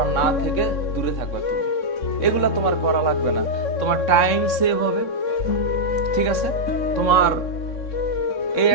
না থেকে দূরে থাকবে তুমি, এগুলা তোমার করা লাগবে না, তোমার টাইম সেভ হবে, ঠিক আছে। তোমার এই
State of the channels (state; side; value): late; right; 3.6 ms